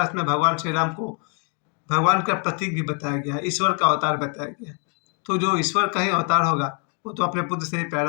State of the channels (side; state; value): right; quieter; 38.5 dB